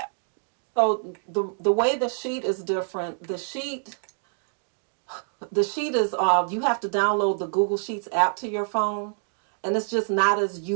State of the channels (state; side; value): silent; left; digital silence